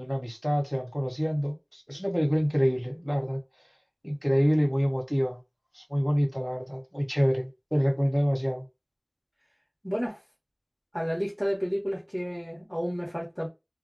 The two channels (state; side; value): identical; both; correlation 1.00